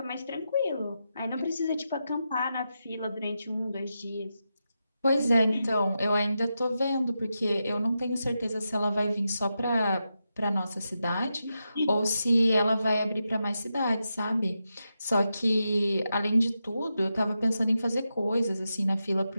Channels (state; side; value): inverted; both; correlation -0.88